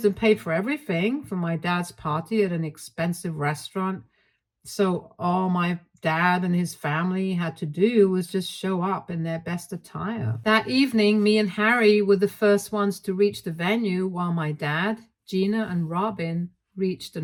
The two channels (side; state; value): both; identical; correlation 1.00